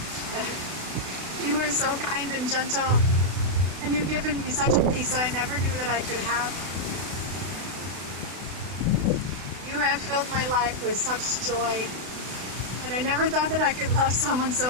You are so kind and gentle, and you've given me such a peace that I never knew that I could have. You have filled my life with such joy, and I never thought that I could love someone so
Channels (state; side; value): late; left; 32 ms